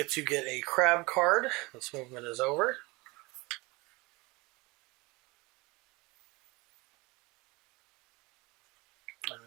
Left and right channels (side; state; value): left; quieter; 24.5 dB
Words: to get a crab card. This movement is over. And